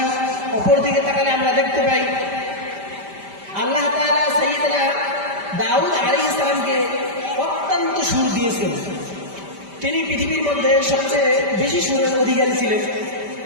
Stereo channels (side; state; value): left; late; 5.1 ms